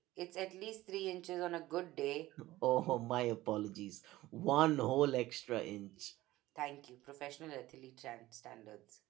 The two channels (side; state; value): left; quieter; 16.9 dB